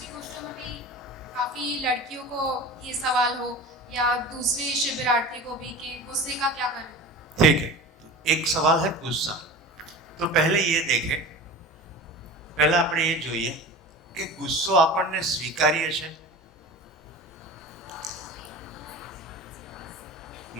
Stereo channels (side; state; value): both; normal; correlation 0.34